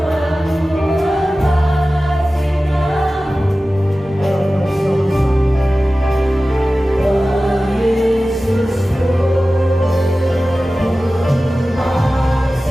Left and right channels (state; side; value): normal; both; correlation 0.96